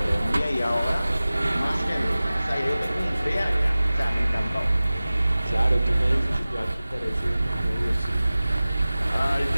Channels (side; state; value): both; inverted; correlation -0.97